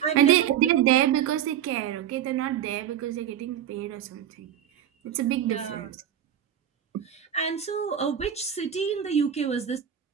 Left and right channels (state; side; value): quieter; left; 9.8 dB